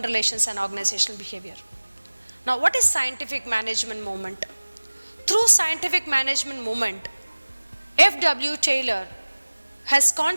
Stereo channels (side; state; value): both; inverted; correlation -1.00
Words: relations and organizational behavior. Now, what is scientific management movement? Through scientific management movement, F.W. Taylor has